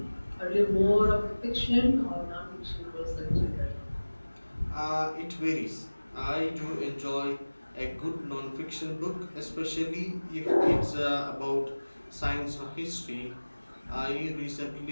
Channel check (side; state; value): both; inverted; correlation -1.00